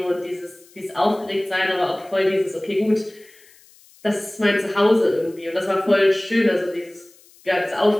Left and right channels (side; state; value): left; noise; hiss, 27 dB below the sound